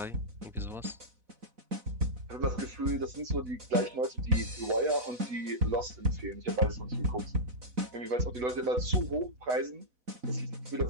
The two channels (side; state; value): left; late; 4.1 ms